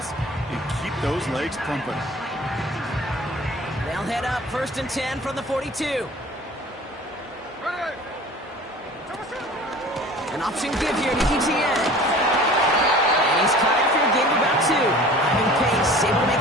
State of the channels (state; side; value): normal; both; correlation 0.44